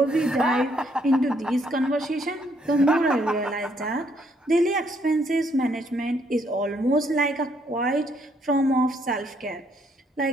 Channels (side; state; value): both; normal; correlation 0.70